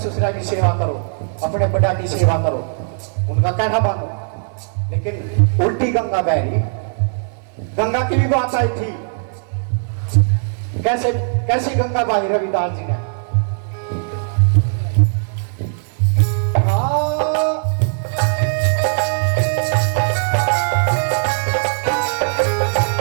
की सेवा करो, अपने बड़ा की सेवा करो, उनका कहना मानो। लेकिन उल्टी गंगा बह रही, गंगा की भी बात आई थी। कैसी गंगा बही रविदास जी ने?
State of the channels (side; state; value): left; silent; digital silence